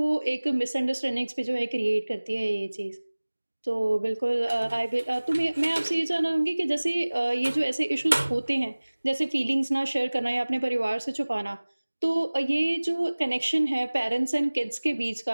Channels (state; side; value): inverted; both; correlation -1.00